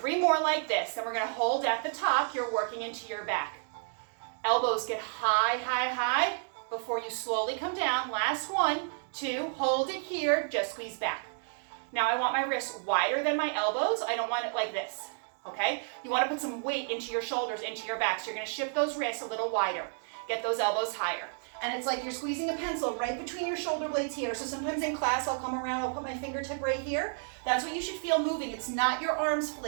more like this. Then we're going to hold at the top. You're working into your back. Elbows get high, high, high before you slowly come down. Last 1, 2, hold it here. Just squeeze back. Now I want my wrists wider than my elbows. I don't want it like this. Okay? You want to put some weight into your shoulders, into your back. So you're going to shift those wrists a little wider. Get those elbows higher. And it's like you're squeezing a pencil right between your shoulder blades here. So sometimes in class, I'll come around, I'll put my fingertip right here. That's what you should feel moving. It's not your arms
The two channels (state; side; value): silent; left; digital silence